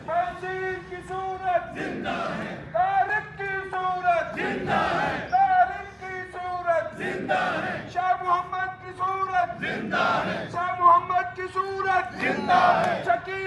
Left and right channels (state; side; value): identical; both; correlation 1.00